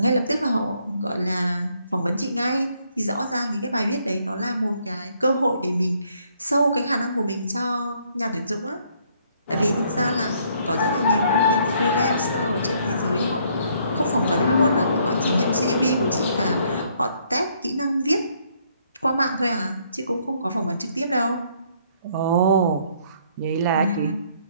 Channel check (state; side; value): inverted; both; correlation -0.68